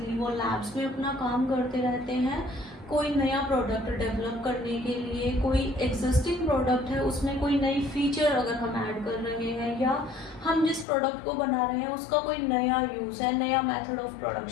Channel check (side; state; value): right; drops out; at 10.9 s